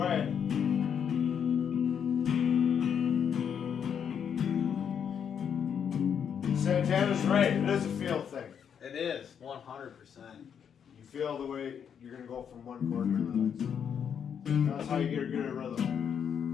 Santana's right. It is a feel thing. It is 100%. You feel the way you're gonna go from one chord to the next. That's how you get good at rhythm.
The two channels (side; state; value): right; quieter; 7.8 dB